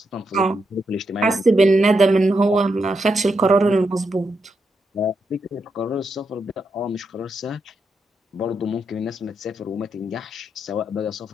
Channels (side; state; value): both; normal; correlation 0.83